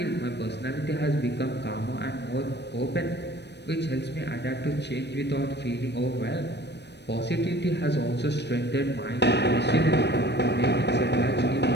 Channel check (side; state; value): right; late; 0.50 ms